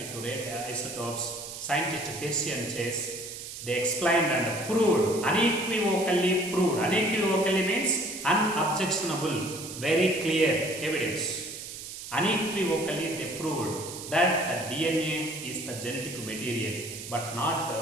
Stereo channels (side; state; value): right; noise; hiss, 10 dB below the sound